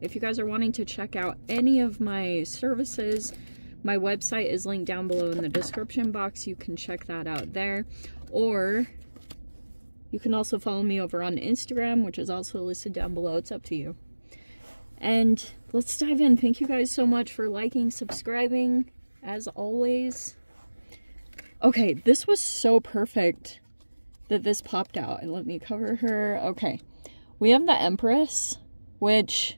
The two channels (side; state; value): both; inverted; correlation -1.00